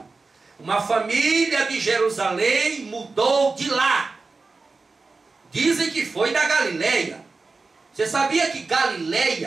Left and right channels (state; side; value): quieter; left; 3.9 dB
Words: Uma família de Jerusalém mudou de lá. Dizem que foi da Galileia. Você sabia que